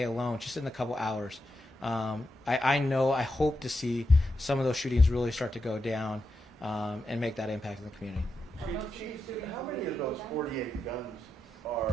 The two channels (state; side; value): normal; both; correlation 0.86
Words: alone, just in a couple hours. I hope to see some of those shootings really start to go down and make that impact in the community. Chief, how many of those 48 guns